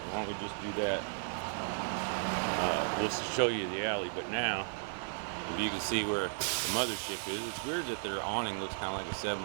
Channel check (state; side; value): silent; left; 55 dB below the other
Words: don't we just do that? We'll show you the alley. But now, if you can see where the mothership is, it's weird that their awning looks kind of like a